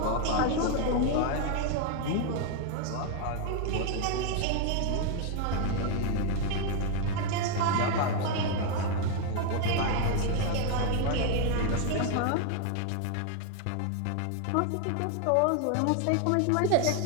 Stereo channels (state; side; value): different; both; correlation 0.00